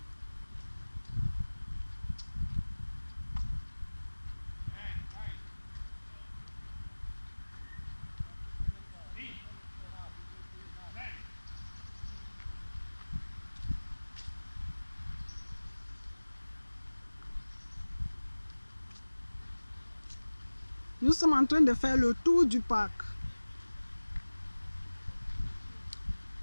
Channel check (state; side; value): inverted; both; correlation -1.00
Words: Nous sommes en train de faire le tour du parc.